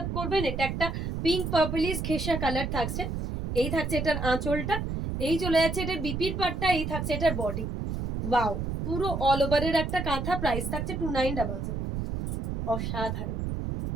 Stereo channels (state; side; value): noise; right; rumble, 3 dB below the sound